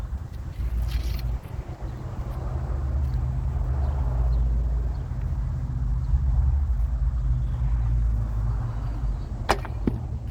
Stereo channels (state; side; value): identical; both; correlation 1.00